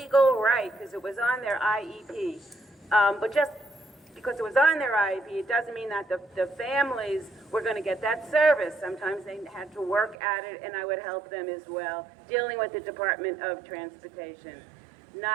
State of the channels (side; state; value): left; drops out; at 10.2 s